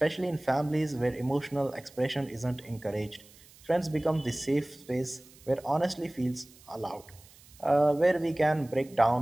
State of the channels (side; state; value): right; noise; hiss, 24 dB below the sound